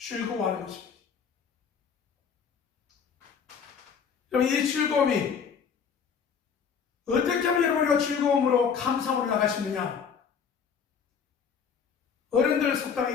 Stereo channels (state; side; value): quieter; right; 6.7 dB